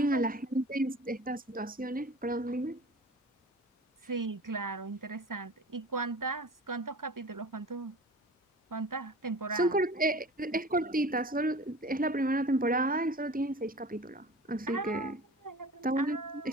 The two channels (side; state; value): both; normal; correlation 0.40